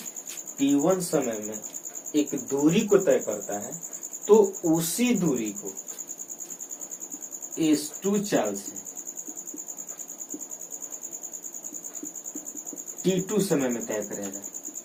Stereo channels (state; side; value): identical; both; correlation 1.00